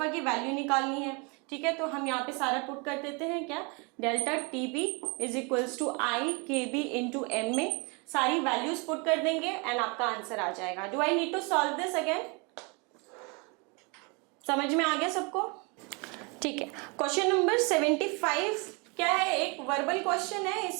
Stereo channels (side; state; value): left; quieter; 31.1 dB